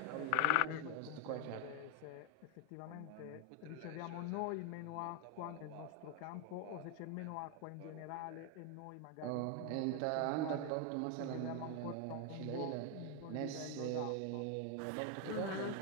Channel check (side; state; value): both; different; correlation 0.01